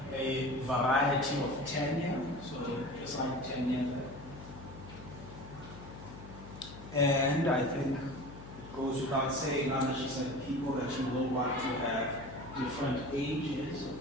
a variety of tenure. So, just like tenure. And I think it goes without saying, she said, people that you will want to have different ages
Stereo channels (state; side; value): noise; left; hum, 14 dB below the sound